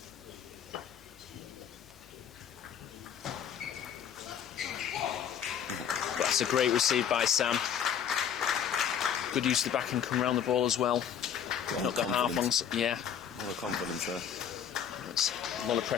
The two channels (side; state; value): right; quieter; 8.6 dB